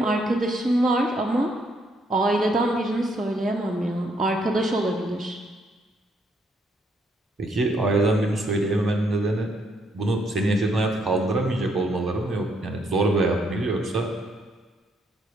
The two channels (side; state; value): both; normal; correlation 0.72